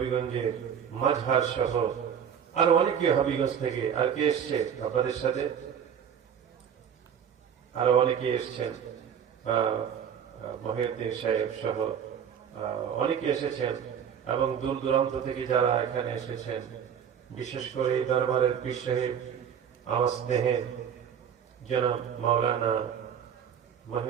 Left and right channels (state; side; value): quieter; left; 8.2 dB